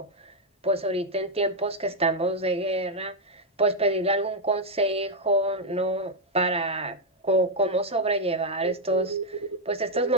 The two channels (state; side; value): normal; both; correlation 0.01